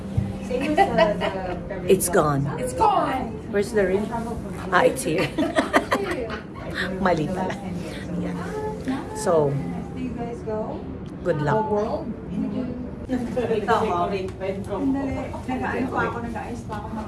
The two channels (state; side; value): identical; both; correlation 1.00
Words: it's gone. It's gone! Where's the ring? Ah, it's here. Mali pala. Yeah. So, good luck.